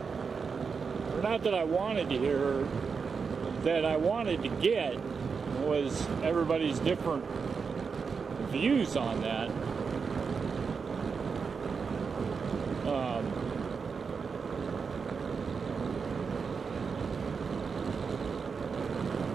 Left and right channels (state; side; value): quieter; left; 5.5 dB